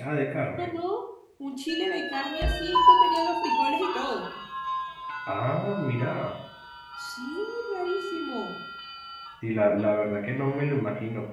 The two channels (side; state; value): both; identical; correlation 1.00